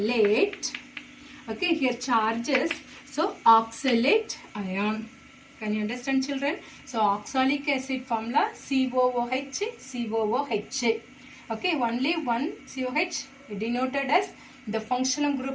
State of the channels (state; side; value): identical; both; correlation 1.00